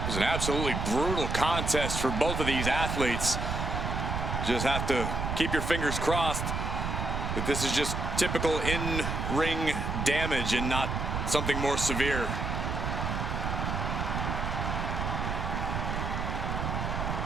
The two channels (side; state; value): right; noise; rumble, 2 dB below the sound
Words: was an absolutely brutal contest for both of these athletes. Just have to keep your fingers crossed that this is just typical in-ring damage and not something more severe.